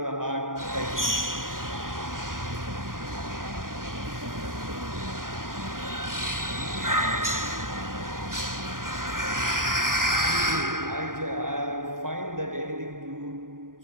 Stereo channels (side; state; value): left; late; 0.90 ms